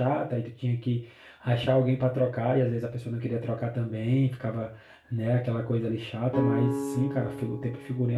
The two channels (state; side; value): identical; both; correlation 1.00